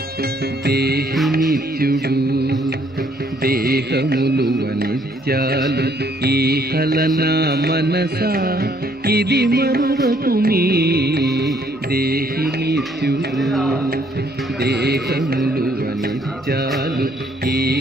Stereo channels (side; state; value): both; normal; correlation 0.66